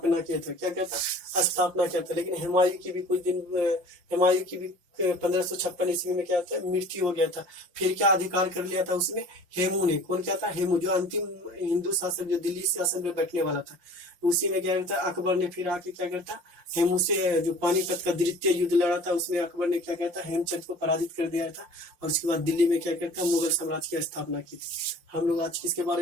किया था। क्या कहता? स्थापना किया था। लेकिन हुमायूं की भी 1556 ईस्वी में क्या था? मृत्यु हो गया था। फिर क्या अधिकार कर लिया था उसमें? हेमू ने। कौन क्या था? हेमू, जो अंतिम हिंदू शासक जो दिल्ली शासन में बैठने वाला था। उसी में क्या करता? अकबर ने फिर आके क्या करता? हेमू से जो पानीपत का द्वितीय युद्ध लड़ा था उसमें अकबर ने क्या कहता? हेमचंद को पराजित कर दिया था। और उसके बाद दिल्ली में क्या करता? मुगल साम्राज्य की स्थापना की थी। हम लोग आज किसके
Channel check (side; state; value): left; late; 5.7 ms